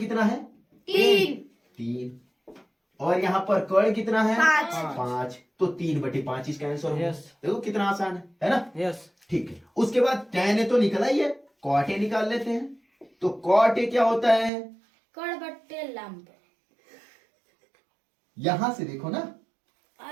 है? 3 और यहाँ पर कर्ण कितना है? 5। तो 3/5 इसका आंसर होगा। Yes. देखो कितना आसान है ना। यस। ठीक है। उसके बाद tan ए तो निकला ही है, cot ए निकाल लेते हैं। तो cot ए क्या होता है? कर्ण बटे लंब। यहां से देखो ना,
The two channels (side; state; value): left; drops out; at 14.5 s